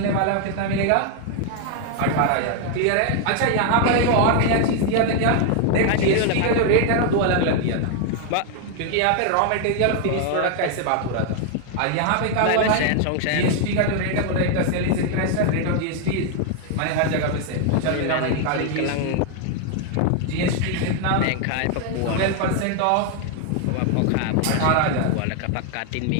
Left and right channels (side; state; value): both; different; correlation 0.00